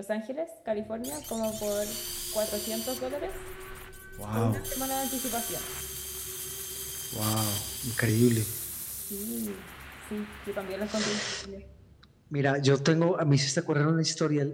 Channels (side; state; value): both; identical; correlation 1.00